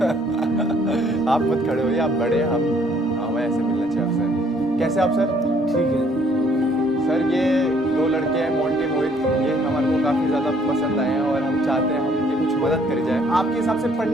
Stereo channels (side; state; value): both; normal; correlation 0.63